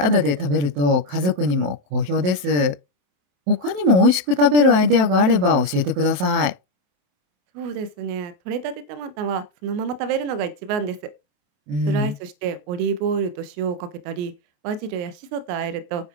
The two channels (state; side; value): late; left; 27 ms